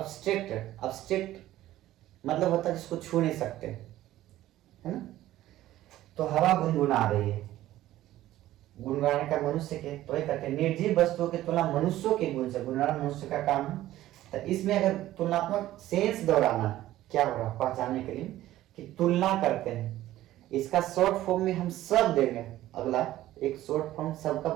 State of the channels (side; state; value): left; quieter; 14.6 dB